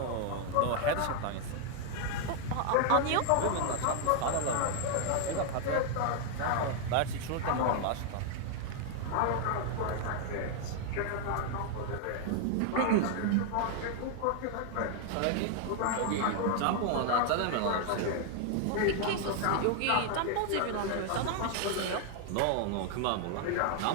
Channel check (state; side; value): different; both; correlation 0.00